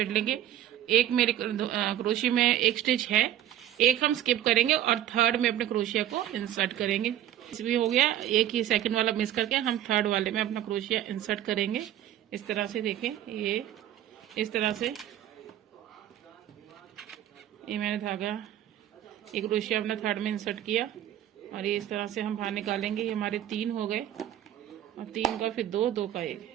लेंगे। एक मेरे क्रोशिया में एक स्टिच है, एक हम स्किप करेंगे और थर्ड में अपने क्रोशिया को इंसर्ट करेंगे। इसमें हो गया, एक ही सेकंड वाला मिस करके हम थर्ड वाले में अपना क्रोशिया इंसर्ट करेंगे। इस तरह से देखें, ये इस तरह से ये मैंने धागा एक क्रोशिया अपना थर्ड में इंसर्ट किया और ये इस तरह से हम बाहर निकालेंगे। ये हमारे 3 हो गए और 3 का फिर 2, 2 का 1।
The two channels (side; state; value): left; quieter; 11.8 dB